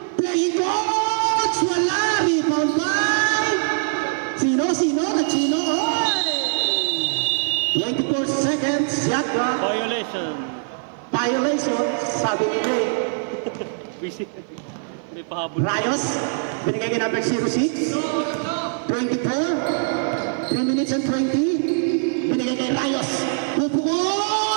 Playing coach, wala. Rebound by Sino? 24 seconds, shot clock. Violation, sabi ni Ray. Easy. Hindi pahabol. Rayos, binigay kay number 06. 24, 3 minutes and 20. Binigay kay Rayos.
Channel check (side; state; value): left; silent; 55 dB below the other